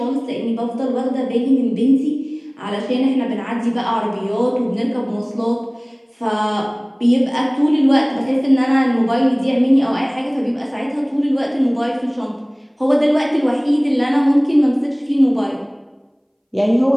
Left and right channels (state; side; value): identical; both; correlation 1.00